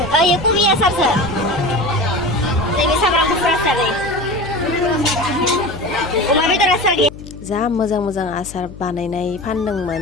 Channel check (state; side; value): noise; left; hum, 16 dB below the sound